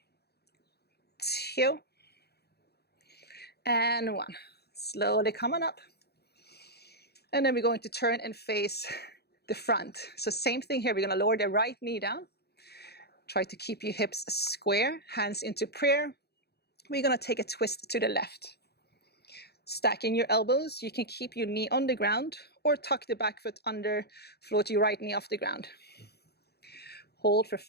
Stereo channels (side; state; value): right; late; 0.47 ms